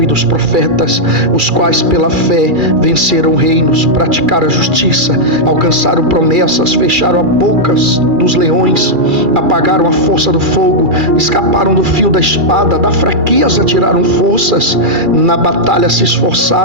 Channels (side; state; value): left; late; 2.4 ms